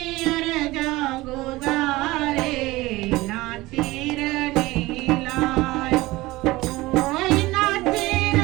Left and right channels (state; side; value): quieter; left; 19.6 dB